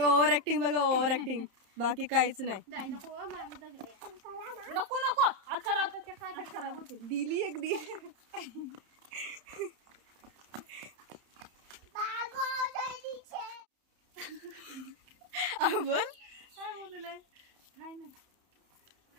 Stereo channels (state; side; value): late; left; 31 ms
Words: बघा ओव्हर ऍक्टिंग, बाकी काहीच नाही. नको नको हात खराब होते. दिली एक दिली. बोल काय बोललंय काय नाही.